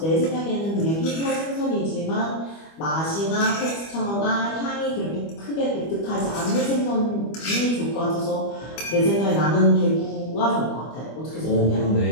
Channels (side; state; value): right; late; 25 ms